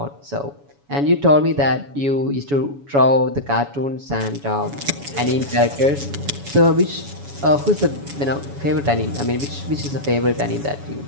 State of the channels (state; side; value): late; left; 7.1 ms